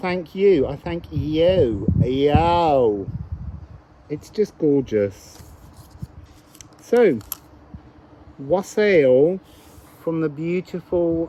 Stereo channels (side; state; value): both; identical; correlation 1.00